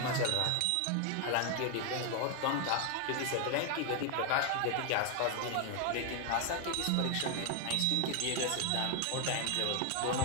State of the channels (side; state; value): both; different; correlation 0.01